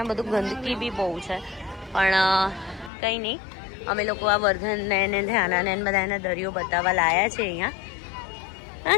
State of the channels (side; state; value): right; drops out; at 2.9 s